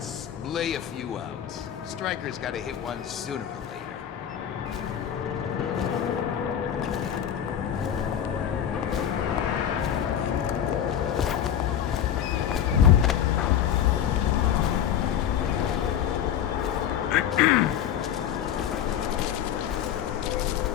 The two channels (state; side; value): quieter; right; 9.8 dB